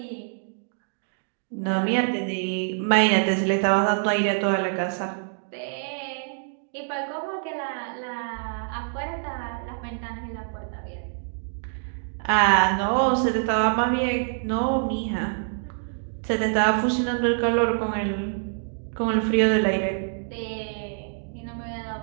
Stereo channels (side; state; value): left; silent; digital silence